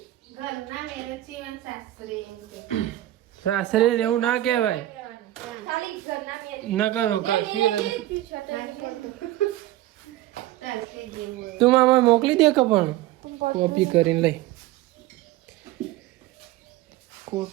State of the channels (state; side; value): quieter; left; 15.4 dB